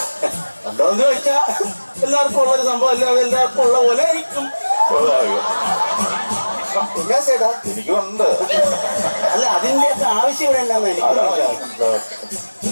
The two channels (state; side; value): inverted; both; correlation -1.00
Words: എന്താന്ന് ചോദിച്ചാ എല്ലാവർക്കും ഉള്ളൊരു സംഭവം അല്ല, എല്ലാവർക്കും ഉള്ള പോലെ ആയിരിക്കും. എന്നാ ചേട്ടാ? എനിക്കുണ്ട്. അല്ല അതിന്റെ ഒക്കെ ആവശ്യം ഇവിടെ എന്താന്ന് എനിക്ക്